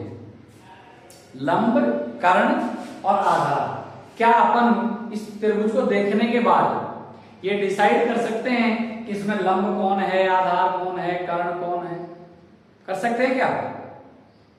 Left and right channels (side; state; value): both; identical; correlation 1.00